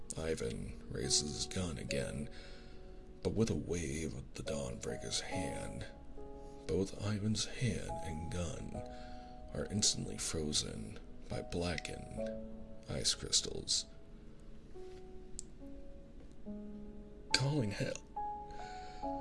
Ivan raises his gun again, but with a wave of the Dawnbreaker's hand, both Ivan's hand and gun are instantly frozen by blackened ice crystals. Calling hell.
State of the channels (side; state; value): both; identical; correlation 1.00